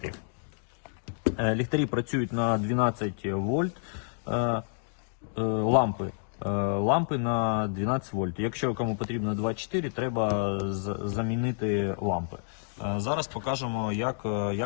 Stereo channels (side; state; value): right; silent; digital silence